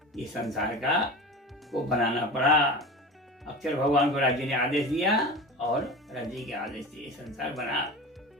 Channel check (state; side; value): normal; both; correlation 0.32